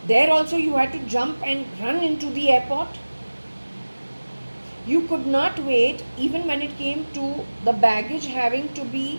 there also you had to jump and run into the airport. You could not wait even when it came to the baggage having to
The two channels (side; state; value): both; inverted; correlation -1.00